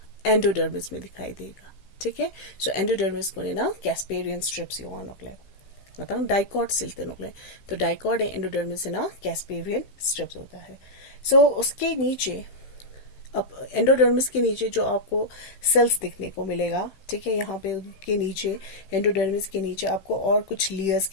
एंडोडर्मिस में दिखाई देगा. ठीक है. सो एंडोडर्मिस को ना कैस्पेरियन स्ट्रिप्स युवा नकले मतलब डाइकॉट सिलते नकले. तो डाइकॉट एंडोडर्मिस ना कैस्पेरियन स्ट्रिप्स होता है. सो उसके नीचे अब एंडोडर्मिस के नीचे जो आपको सेल्स दिखने को मिलेगा, ठीक है, यहाँ पे उनके नीचे एंडोडर्मिस के नीचे आपको और कुछ लेयर्स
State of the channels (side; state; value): right; late; 16 ms